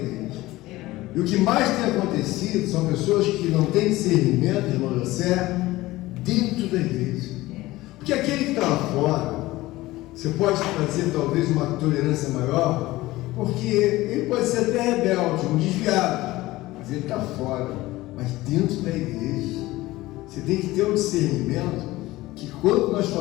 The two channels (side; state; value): right; quieter; 18.3 dB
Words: E o que mais tem acontecido são pessoas que não têm discernimento, irmão José, dentro da igreja. Porque aquele que está lá fora, você pode fazer talvez uma tolerância maior, porque ele pode ser até rebelde, um desviado, mas ele está fora. Mas dentro da igreja, você tem que ter um discernimento que quando nós